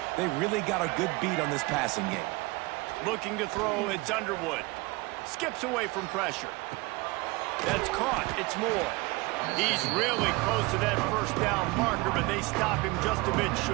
They really got a good beat on this passing game. Looking to throw, it's Underwood. Skips away from pressure. That's caught. It's Moore. He's really close to that first down marker, but they stop him just a bit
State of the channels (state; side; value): quieter; left; 24.1 dB